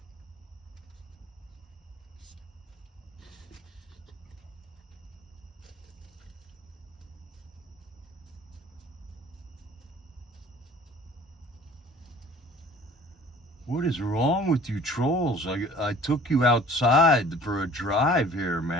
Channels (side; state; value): both; normal; correlation 0.49